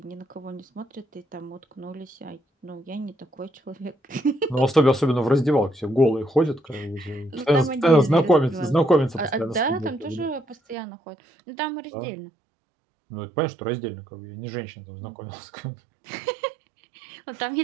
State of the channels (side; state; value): left; drops out; at 10.8 s